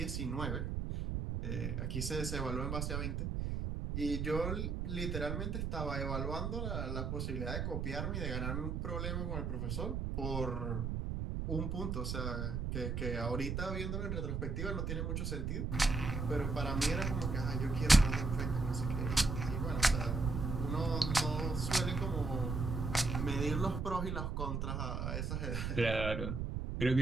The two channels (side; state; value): right; noise; rumble, 1 dB below the sound